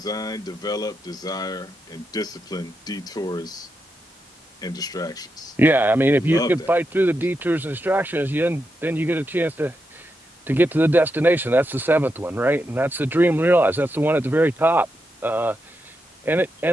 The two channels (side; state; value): both; normal; correlation 0.85